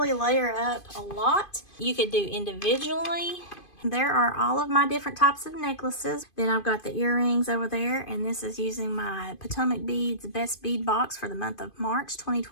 layer up a lot. You could do individually. There are all of my different types of necklaces. Then I've got the earrings over there, and this is using my Potomac Beads Best Bead Box for the month of March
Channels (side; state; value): right; late; 2.5 ms